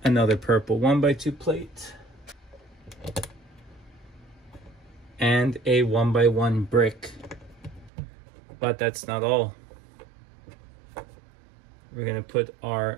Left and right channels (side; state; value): left; drops out; at 7.9 s